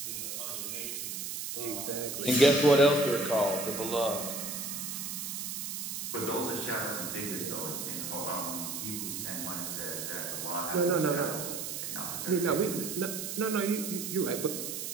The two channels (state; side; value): noise; right; hiss, 5 dB below the sound